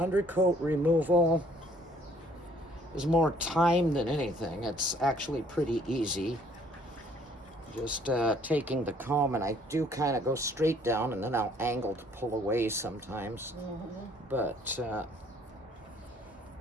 removal is more time than anything. It's actually pretty easy. Just taking the comb, and I do kind of go straight down and then I'll angle to pull away sometimes. But see,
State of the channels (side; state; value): both; normal; correlation 0.60